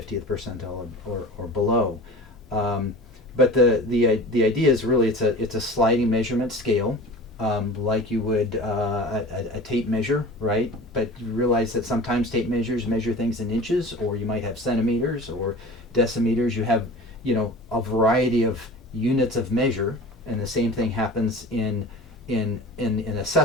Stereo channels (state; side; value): normal; both; correlation 0.37